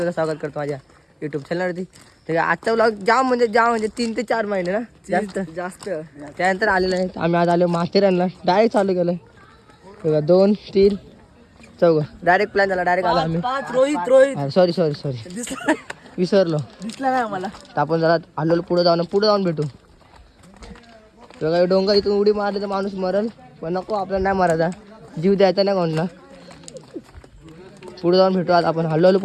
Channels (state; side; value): identical; both; correlation 1.00